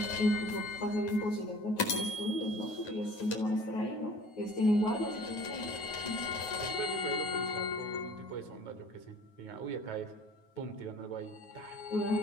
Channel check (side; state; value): right; late; 9.4 ms